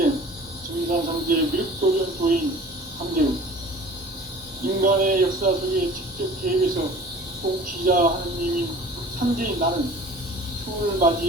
증산상제 미륵도전 도인 함재훈, 인간의 역사 속에 직접 개입해서 통치자 하느님인 상제인 나는 추운을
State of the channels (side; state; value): both; normal; correlation 0.45